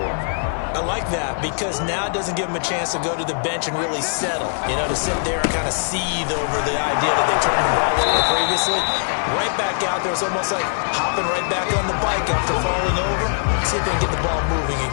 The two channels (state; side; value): silent; right; 58 dB below the other